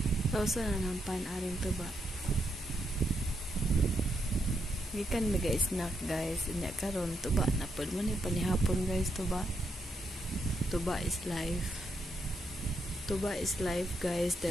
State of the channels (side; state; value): both; normal; correlation 0.80